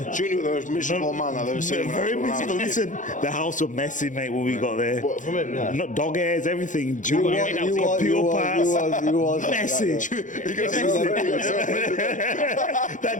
Junior was the most miserable man I've ever seen. very miserable. Listen, the house was messy, mate, when we got there. What, from him? Yeah. Not dog hairs, everything. Junior, You computer parts. was. Messy. That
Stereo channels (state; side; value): late; right; 0.37 ms